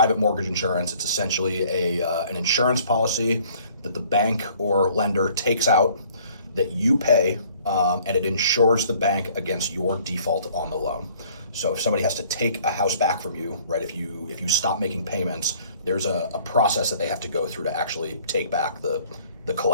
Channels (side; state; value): both; inverted; correlation -0.56